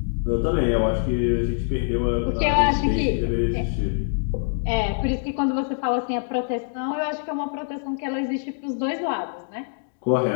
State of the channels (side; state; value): right; silent; digital silence